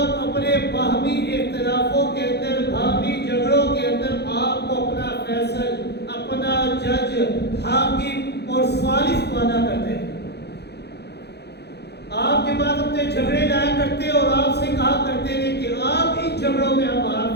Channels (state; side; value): late; right; 0.48 ms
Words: اپنے باہمی اختلافوں کے اندر، باہمی جھگڑوں کے اندر آپ کو اپنا فیصل، اپنا جج، حاکم اور ثالث مانا کرتے تھے۔ آپ کے بعد اپنے جھگڑے لایا کرتے اور آپ سے کہا کرتے تھے کہ آپ ان جھگڑوں میں ہمارا